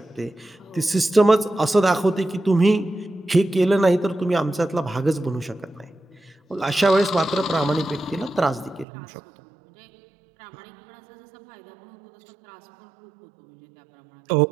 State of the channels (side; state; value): left; drops out; at 8.8 s